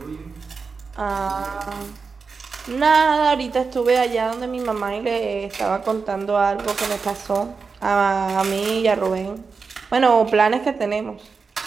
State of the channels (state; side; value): quieter; left; 4.9 dB